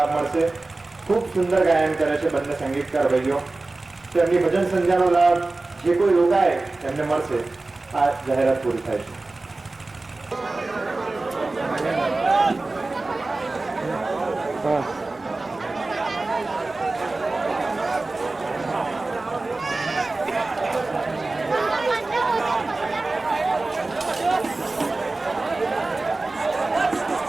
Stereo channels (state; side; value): quieter; left; 3.2 dB